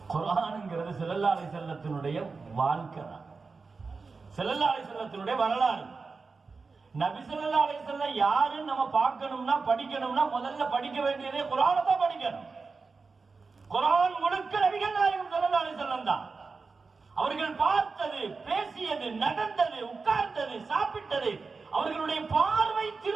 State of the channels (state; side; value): quieter; left; 4.4 dB